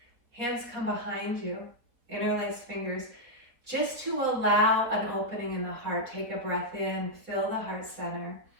Hands come behind you, interlace fingers, just to allow an opening in the heart. Take a breath in, fill the heart center.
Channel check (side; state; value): left; late; 4.2 ms